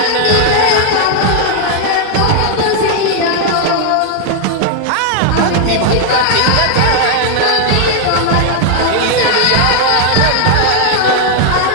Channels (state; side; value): different; both; correlation 0.00